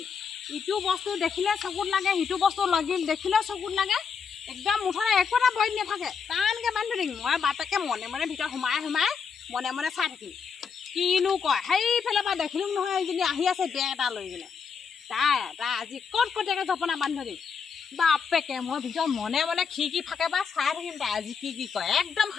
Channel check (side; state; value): right; quieter; 6.1 dB